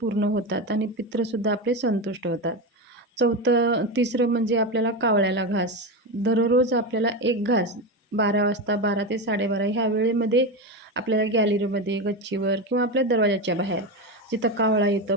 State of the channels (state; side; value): normal; both; correlation 0.17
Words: पूर्ण होतात आणि पित्रसुद्धा आपले संतुष्ट होतात. तिसरं म्हणजे आपल्याला कावळ्याला घास. दररोज आपल्याला 1 घास 12 वाजता, 12 ते 12:30 ह्या वेळेमध्ये आपल्याला गॅलरीमध्ये, गच्चीवर किंवा आपल्या दरवाजाच्या बाहेर जिथं कावळा येतं,